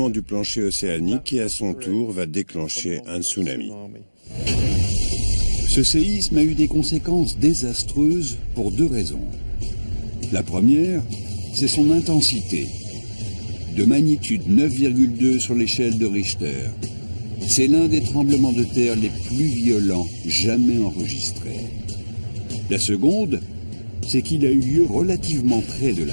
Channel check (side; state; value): both; inverted; correlation -1.00